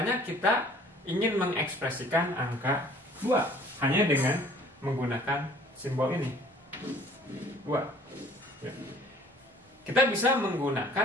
kita ingin mengekspresikan angka 2 hanya dengan menggunakan simbol ini, 2, ya. Kita bisa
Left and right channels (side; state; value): both; normal; correlation 0.53